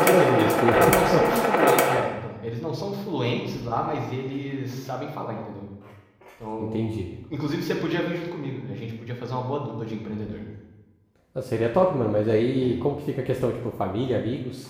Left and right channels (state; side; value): identical; both; correlation 1.00